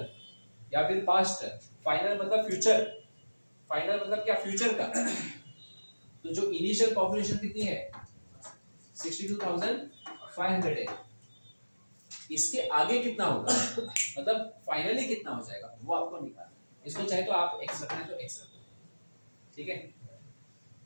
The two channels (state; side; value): inverted; both; correlation -1.00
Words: या फिर पास्ट। फाइनल मतलब फ्यूचर। फाइनल मतलब क्या? फ्यूचर का। तो जो इनिशियल पॉपुलेशन कितनी है? 62,500 है। इसके आगे कितना होगा, मतलब फाइनली कितना हो जाएगा, वो आपको निकालना। इसको चाहे तो आप x रखना है तो x रखो, ठीक है।